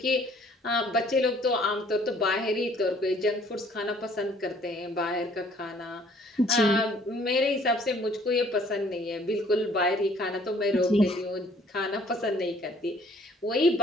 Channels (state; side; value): normal; both; correlation 0.58